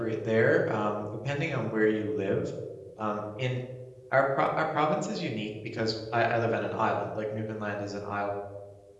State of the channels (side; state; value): both; identical; correlation 1.00